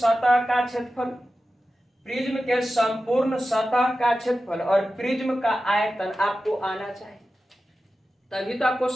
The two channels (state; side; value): normal; both; correlation 0.93